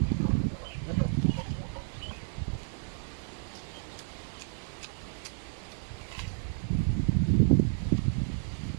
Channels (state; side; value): silent; left; digital silence